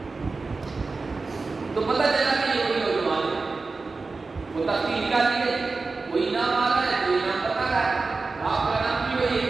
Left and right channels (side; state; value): left; quieter; 3.9 dB